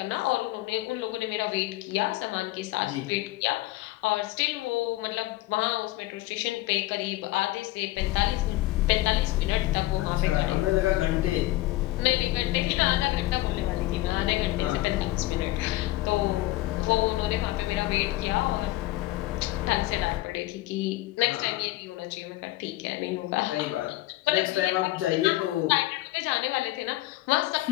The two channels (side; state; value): right; quieter; 17.9 dB